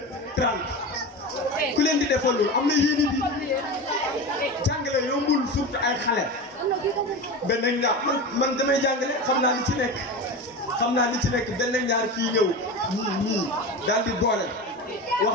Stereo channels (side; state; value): both; normal; correlation 0.26